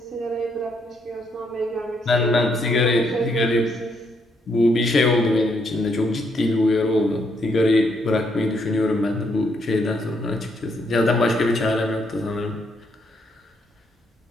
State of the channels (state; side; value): normal; both; correlation 0.74